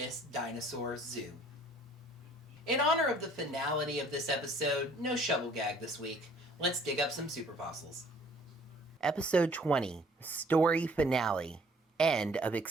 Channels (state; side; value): normal; both; correlation 0.57